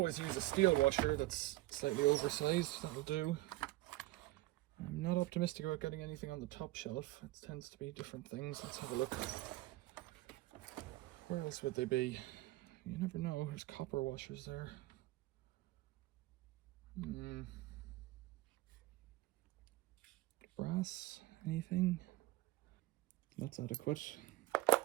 use a steel washer that's slightly oversized, that'll do. I'm not optimistic about getting anything on the top shelf. It tends to be different things. Let's have a look. Where else would they be? You never know. There's copper washers there. Brass? Anything? That's adequate.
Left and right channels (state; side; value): quieter; left; 17.7 dB